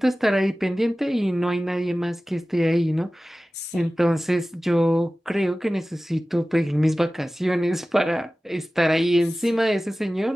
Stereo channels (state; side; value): normal; both; correlation 0.96